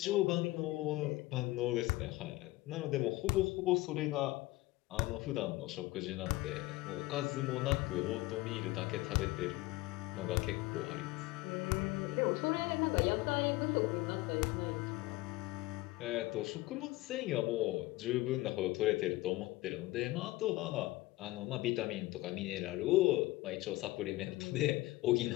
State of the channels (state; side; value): quieter; right; 19.4 dB